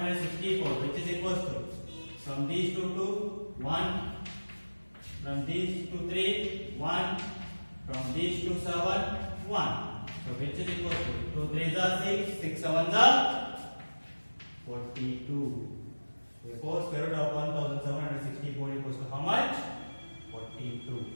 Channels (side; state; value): both; inverted; correlation -1.00